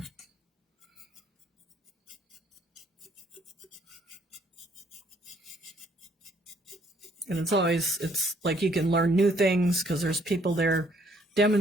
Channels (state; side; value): normal; both; correlation 0.65